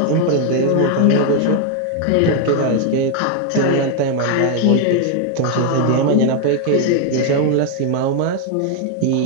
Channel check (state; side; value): different; both; correlation 0.00